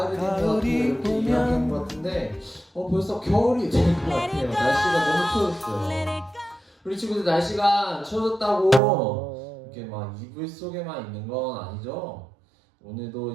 된 것 같아요. 이렇게 이야기한 것 같은데 벌써 겨울이 된 것 같아요. 날씨가 너무 추워졌어요. 우리 친구들 날씨가 추워졌다고 이렇게 막 이불 속에만 있는 건 아니죠?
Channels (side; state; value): left; drops out; at 8.8 s